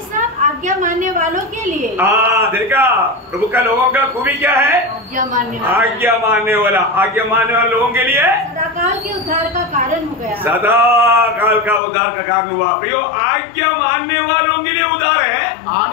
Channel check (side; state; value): right; drops out; at 11.8 s